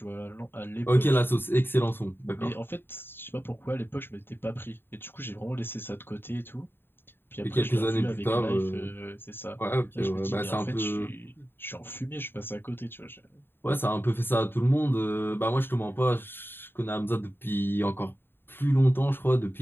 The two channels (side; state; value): right; late; 0.10 ms